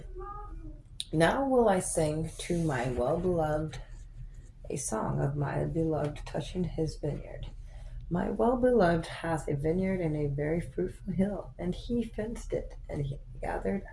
Now will I sing to my well-beloved a song of my beloved touching his vineyard. My well-beloved hath a vineyard in a very fruitful hill, and he fenced it, and he gathered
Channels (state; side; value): identical; both; correlation 1.00